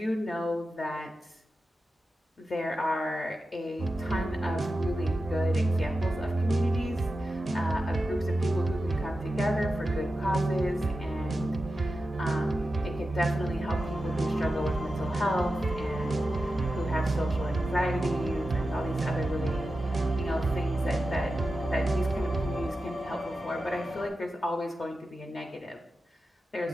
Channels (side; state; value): both; normal; correlation 0.91